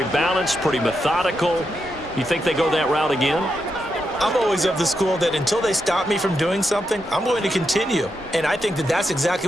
balanced, pretty methodical. You think they go that route again? I'm always of the school that until they stop me from doing something, I'm going to continue. And I think that that's exactly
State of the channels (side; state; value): both; normal; correlation 0.84